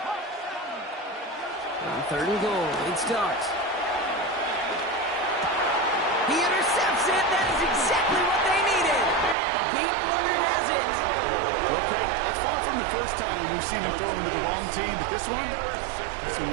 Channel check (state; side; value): drops out; left; at 9.3 s